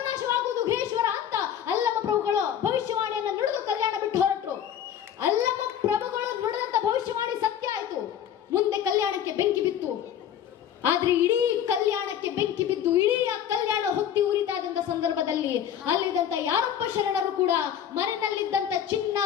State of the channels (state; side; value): quieter; right; 9.6 dB